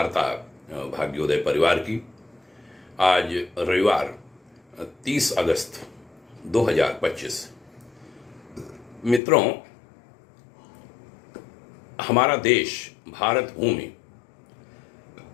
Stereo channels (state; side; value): drops out; right; at 9.2 s